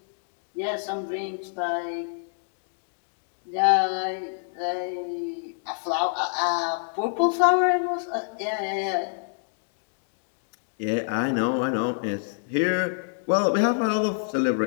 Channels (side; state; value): right; silent; digital silence